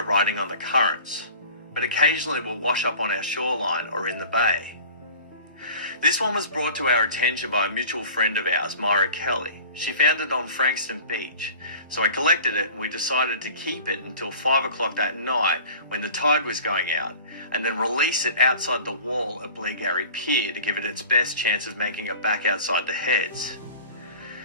riding on the currents, but occasionally will wash up on our shoreline or in the bay. This one was brought to our attention by a mutual friend of ours, Myra Kelly. She found it on Frankston Beach, so I collected it and we decided to keep it until 5 o'clock that night when the tide was going out, and then release it outside the wall at Bleagarry Pier to give it its best chance of making it back outside the heads.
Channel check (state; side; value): inverted; both; correlation -0.43